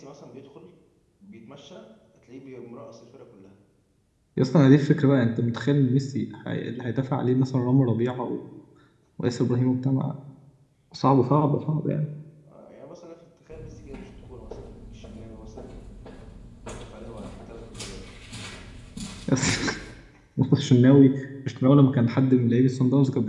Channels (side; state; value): both; identical; correlation 1.00